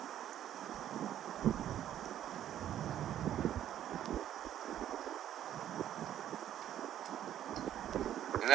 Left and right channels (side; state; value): left; quieter; 11.2 dB